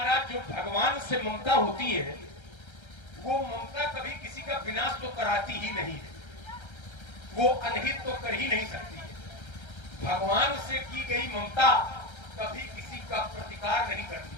जो भगवान से ममता होती है वो ममता कभी किसी का विनाश तो कराती ही नहीं है, वो अनहित तो कर ही नहीं सकती है। भगवान से की गई ममता कभी किसी का प्रतिकार नहीं करती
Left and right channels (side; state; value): right; late; 1.3 ms